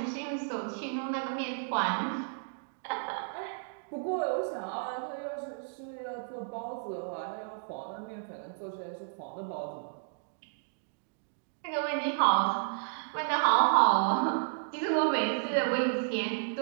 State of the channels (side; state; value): left; silent; digital silence